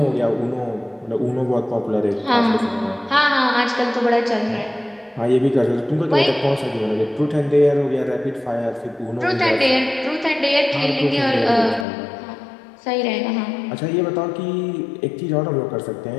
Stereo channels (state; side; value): drops out; right; at 11.9 s